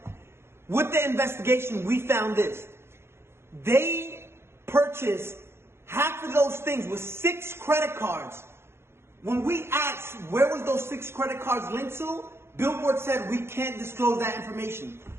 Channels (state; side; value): late; left; 0.12 ms